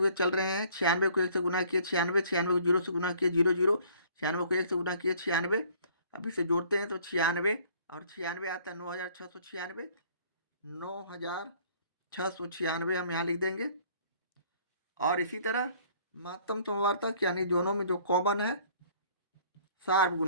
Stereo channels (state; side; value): inverted; both; correlation -0.57